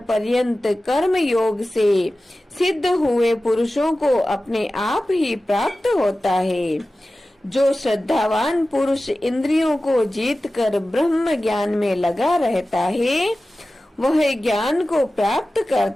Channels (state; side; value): normal; both; correlation 0.95